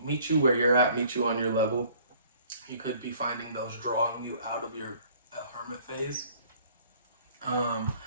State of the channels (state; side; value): inverted; both; correlation -0.56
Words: you where you're at, meet you on your level. You could be finding those drawing you out of your hermit phase.